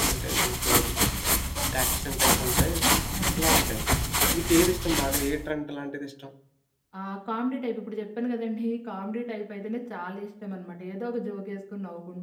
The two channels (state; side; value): identical; both; correlation 1.00